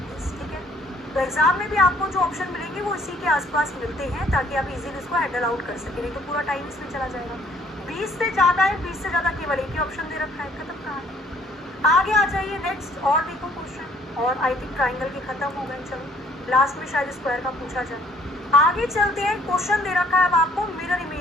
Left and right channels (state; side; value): normal; both; correlation 0.60